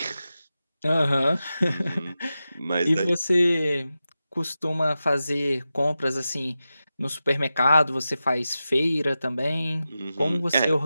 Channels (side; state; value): both; inverted; correlation -0.92